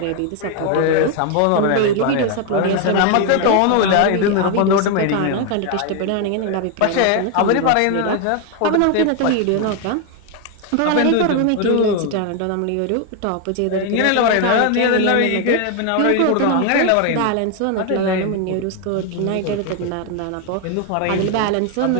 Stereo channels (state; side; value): different; both; correlation 0.01